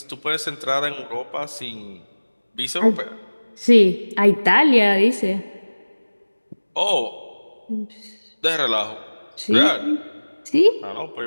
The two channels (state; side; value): inverted; both; correlation -1.00